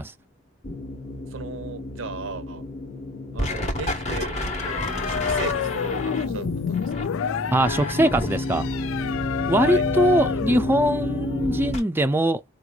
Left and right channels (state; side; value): normal; both; correlation 0.57